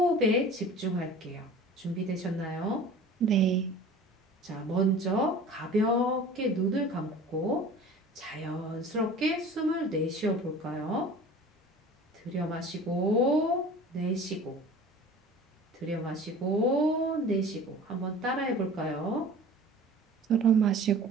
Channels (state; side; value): normal; both; correlation 0.42